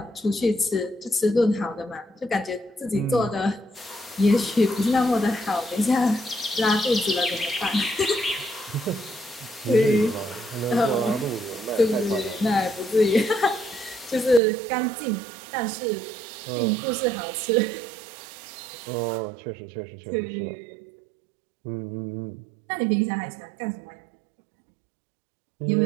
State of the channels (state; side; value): drops out; left; at 14.4 s